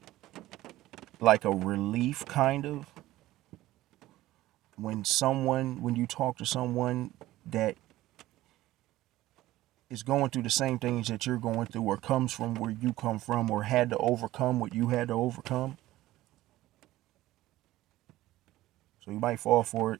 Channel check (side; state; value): left; quieter; 16.2 dB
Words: like a relief kind of when you talk to someone that is going through the same things that you're going through, or comes from where you come from, or had to overcome what you had to overcome. So you might fall for